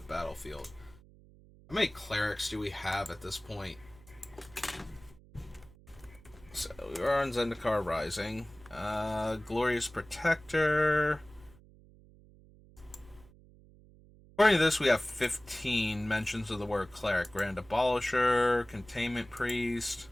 How many clerics do we have at this point? So we are on Zendikar Rising. Glorious Protector. According to this, we have 15 mentions of the word cleric. Grand Abolisher, Containment Priest,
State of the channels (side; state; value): right; noise; hum, 24 dB below the sound